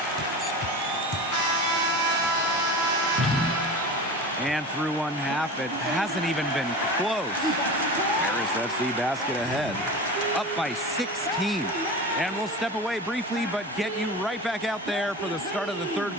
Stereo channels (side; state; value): both; normal; correlation 0.31